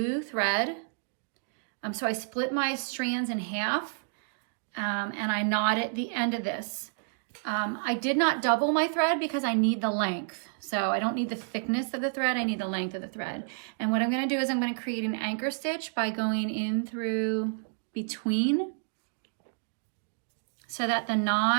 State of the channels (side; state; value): left; silent; digital silence